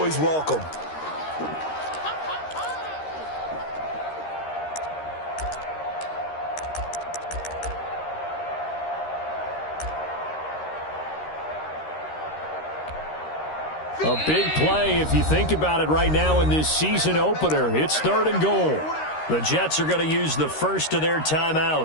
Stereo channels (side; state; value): right; late; 13 ms